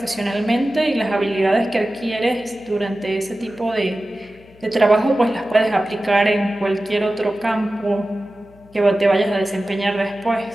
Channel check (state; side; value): noise; left; hum, 26 dB below the sound